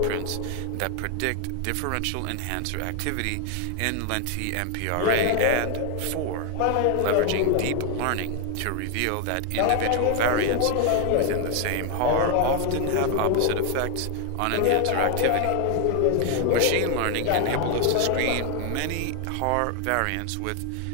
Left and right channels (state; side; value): different; both; correlation 0.00